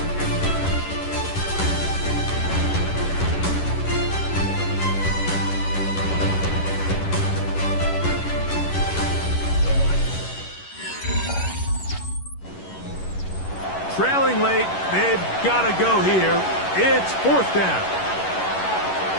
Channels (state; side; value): late; right; 11 ms